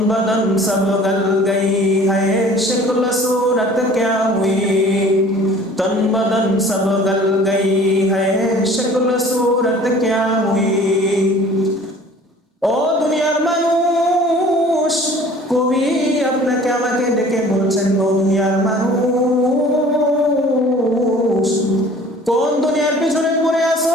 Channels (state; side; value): normal; both; correlation 0.49